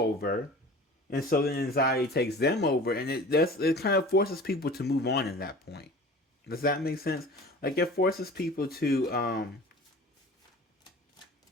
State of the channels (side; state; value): both; normal; correlation 0.41